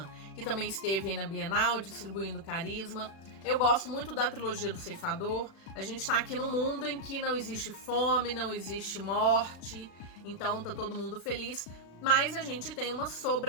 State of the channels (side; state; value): right; late; 36 ms